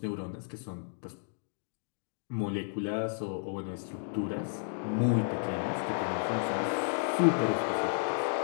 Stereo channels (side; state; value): right; silent; digital silence